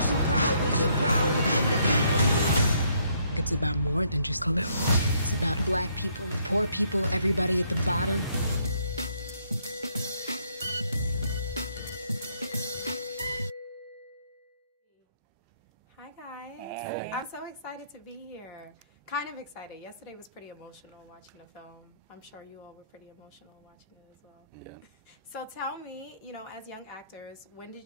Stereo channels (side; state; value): both; inverted; correlation -0.70